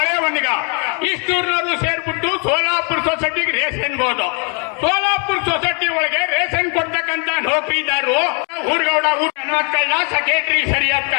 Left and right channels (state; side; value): quieter; right; 36.9 dB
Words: ಇಷ್ಟೂರ್ನವರು ಸೇರ್ಬಿಟ್ಟು ಸೋಲಾಪುರ ಸೊಸೈಟಿಗೆ ರೇಷನ್ ಹೋದ. ಸೋಲಾಪುರ ಸೊಸೈಟಿ ಒಳಗೆ ರೇಷನ್ ಕೊಡ್ತಕ್ಕಂತ ನೌಕರಿದಾರರು ಊರ್ಗೌಡ ಕಳ್ಳ, ಸೆಕ್ರೆಟರಿ ಸರಿಯಾದ